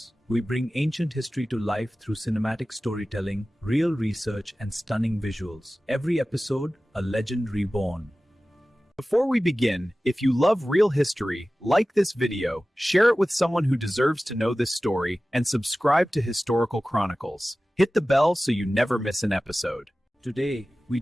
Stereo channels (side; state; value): both; normal; correlation 0.96